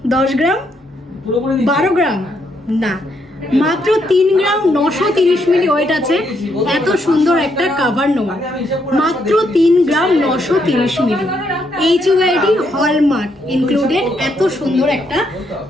10 গ্রাম, 12 গ্রাম? না, মাত্র 3 গ্রাম 930 মিলি ওয়েট আছে এত সুন্দর একটা কভার নোয়া। মাত্র 3 গ্রাম 930 মিলি, HUID হলমার্ক ইনক্লুডেড এত সুন্দর একটা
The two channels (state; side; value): normal; both; correlation 0.76